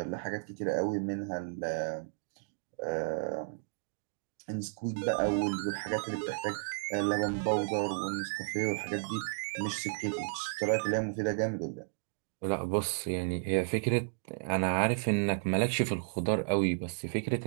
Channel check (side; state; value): left; silent; digital silence